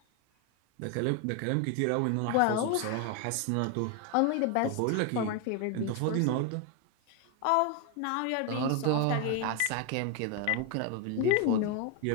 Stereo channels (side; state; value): both; different; correlation 0.01